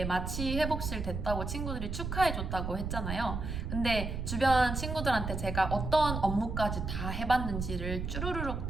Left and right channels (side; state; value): right; noise; rumble, 4 dB below the sound